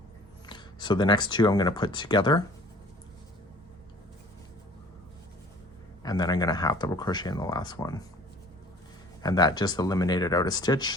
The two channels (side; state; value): both; normal; correlation 0.49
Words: So the next 2 I'm going to put together, and then I'm going to 1/2 double crochet in the last one. and that just eliminated out a stitch